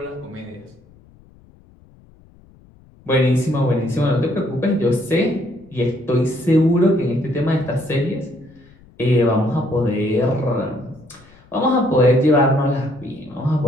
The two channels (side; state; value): left; noise; rumble, 27 dB below the sound